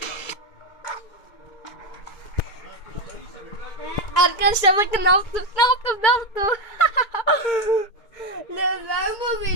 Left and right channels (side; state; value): right; late; 2.2 ms